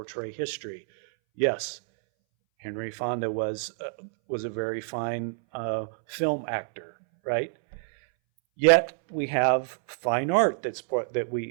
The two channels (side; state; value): left; silent; 60 dB below the other